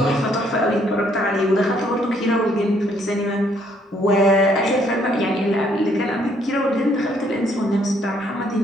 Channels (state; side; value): normal; both; correlation 0.67